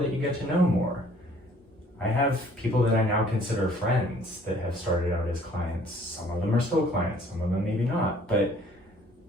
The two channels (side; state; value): both; normal; correlation 0.57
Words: you get to know more. I have people that I now consider friends that have started out as clients. Some of them are still clients, some of them maybe not. But